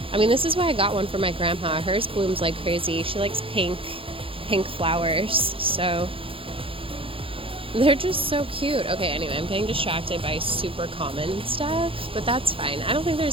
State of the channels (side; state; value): left; late; 0.26 ms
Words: I mean, this is why I got one for my grandma. Hers blooms like crazy. She likes pink flowers, so they're just so cute. Okay, anyway, I'm getting distracted by super common stuff, but that's fine. I don't think